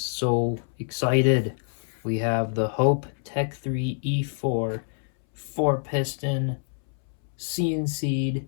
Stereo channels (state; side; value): silent; right; 61 dB below the other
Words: excited. We have the Hope Tech 3 E4 4-piston CNC'd